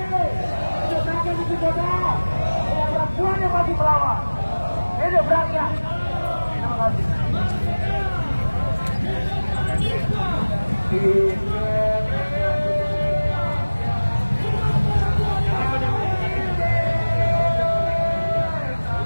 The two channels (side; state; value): both; inverted; correlation -1.00